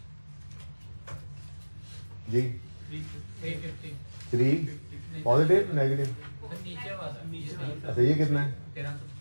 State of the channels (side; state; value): both; inverted; correlation -1.00